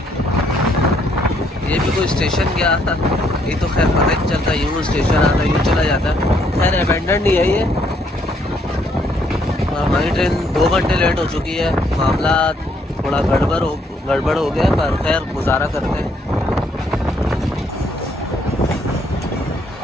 ये भी कोई स्टेशन गया था, ये तो खैर पता नहीं चलता, यूँ स्टेशन आता यूँ चला जाता। खैर अबेंडन नहीं है ये। हमारी ट्रेन 2 घंटे लेट हो चुकी है, मामला थोड़ा गड़बड़ हो गया, पर खैर गुजारा करते हैं।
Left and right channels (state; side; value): normal; both; correlation 0.69